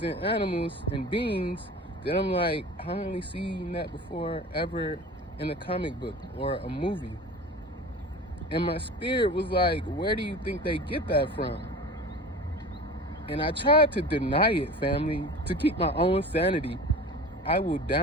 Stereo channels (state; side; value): normal; both; correlation 0.37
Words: and animals and beings that I'm like, I only seen that before ever in a comic book or a movie. And my spirit was like, where do you think they get that from? And I tried to deny it, family, to keep my own sanity. I will